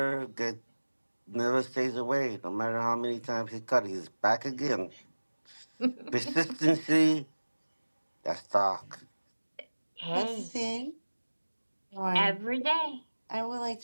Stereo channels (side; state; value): both; inverted; correlation -1.00